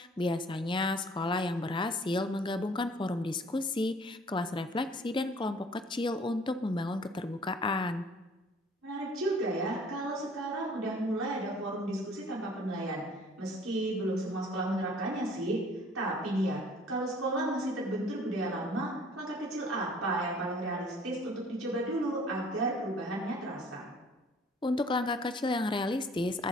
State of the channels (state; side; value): normal; both; correlation 0.54